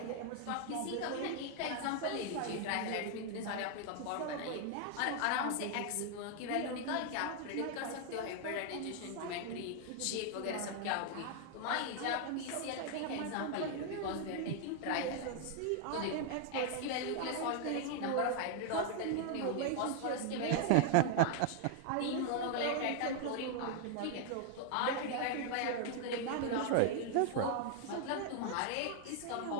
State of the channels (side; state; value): both; different; correlation 0.00